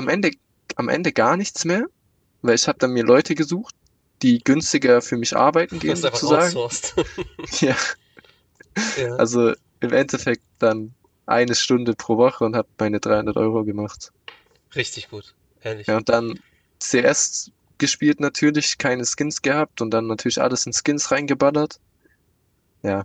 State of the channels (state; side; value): identical; both; correlation 1.00